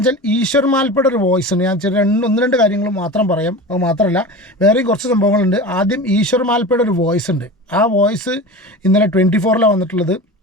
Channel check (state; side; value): normal; both; correlation 0.31